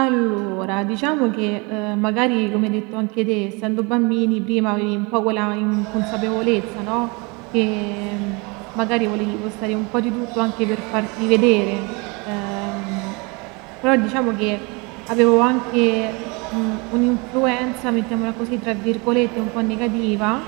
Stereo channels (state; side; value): quieter; left; 28.7 dB